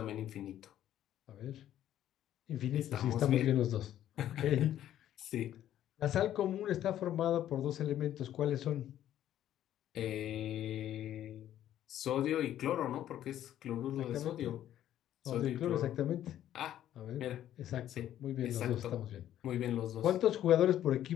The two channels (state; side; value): quieter; right; 11.8 dB